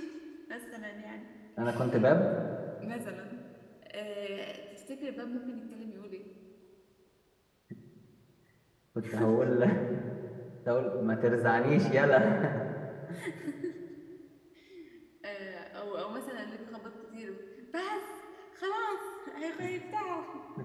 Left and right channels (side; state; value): both; identical; correlation 1.00